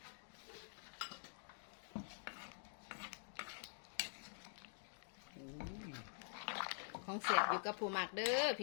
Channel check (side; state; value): right; silent; digital silence